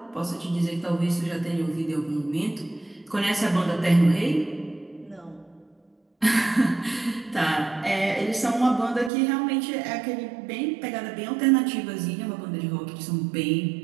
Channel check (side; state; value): left; drops out; at 9.1 s